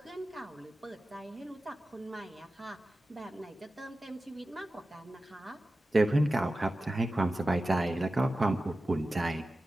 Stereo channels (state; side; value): normal; both; correlation 0.94